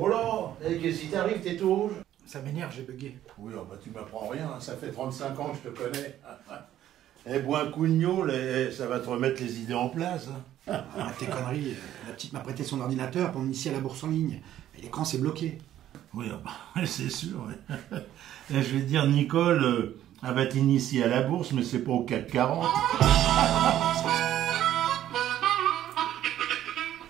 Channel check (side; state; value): left; quieter; 12.2 dB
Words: là, qu'est-ce qui t'arrive, t'es tout rouge? Ça m'énerve, j'ai bugué. Oui, oh bah tu m'apprends rien, hein. Ça fait 35 ans que je te connais. Eh, bois un coup de gnôle et ça va te remettre les idées en place. Hein. Ah, tes conneries, la petite m'a prêté son ordinateur pour m'initier à la bourse en ligne. Et l'écran s'est bloqué. Oui, oh bah, c'est sûr. Ouais. Et je vais te dire, Nicole, elle va t'initier à la bourse, mais c'est pas au CAC 40.